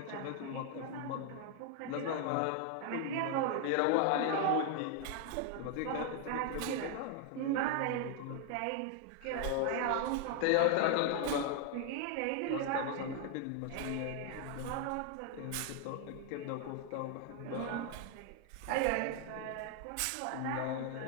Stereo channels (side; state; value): both; different; correlation 0.00